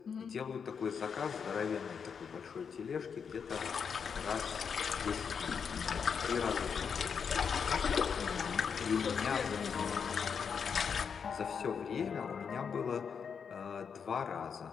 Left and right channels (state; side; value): quieter; right; 6.5 dB